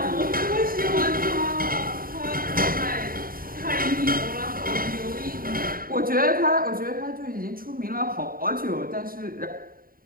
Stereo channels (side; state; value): left; late; 0.42 ms